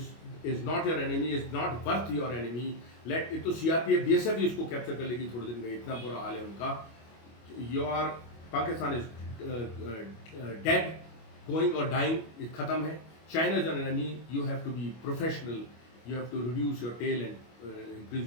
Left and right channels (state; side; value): late; right; 25 ms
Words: not your enemy, is not worth your enemy. Let it तो CRPF BSF भी इसको कैप्चर कर लेगी थोड़े दिन में. इतना बुरा हाल है उनका. Your Pakistan is dead, going और डाइंग. खत्म है. China is an enemy. You have to be professional You have to reduce your tail and increase